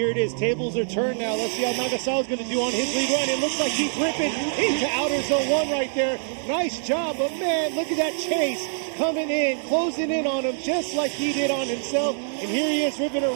it is. Tables are turned now. Let's see how Nagasawa's going to do on his lead run. It looks like he's ripping into outer zone 1 right there. Nice job. But man, look at that chase coming in, closing in on him just like he did on himself. And here he is ripping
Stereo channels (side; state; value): left; silent; digital silence